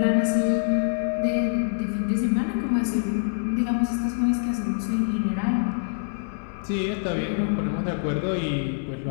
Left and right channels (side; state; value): right; silent; digital silence